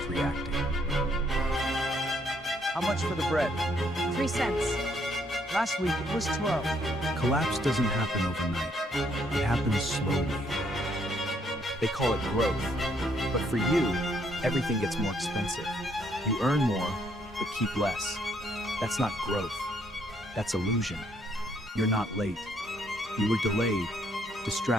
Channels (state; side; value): normal; both; correlation 0.70